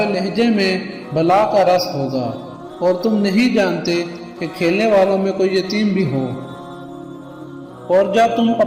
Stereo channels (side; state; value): both; identical; correlation 1.00